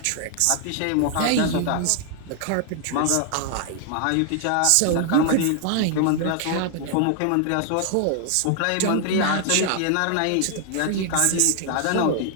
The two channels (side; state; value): both; different; correlation 0.00